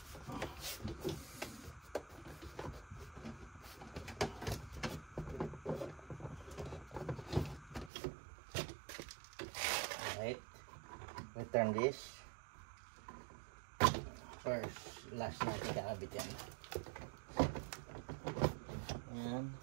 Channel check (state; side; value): drops out; left; at 7.9 s